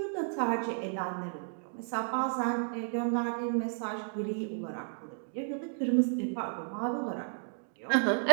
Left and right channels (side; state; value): left; silent; 56 dB below the other